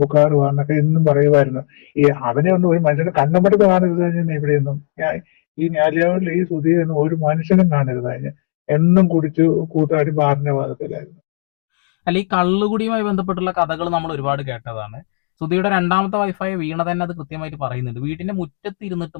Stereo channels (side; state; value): right; silent; digital silence